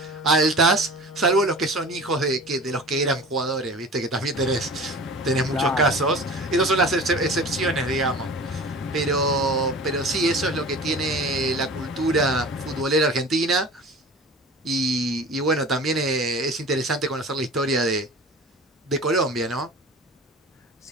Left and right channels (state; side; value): normal; both; correlation 0.39